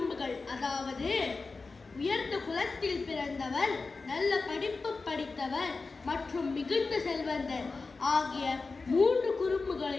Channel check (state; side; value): quieter; right; 4.0 dB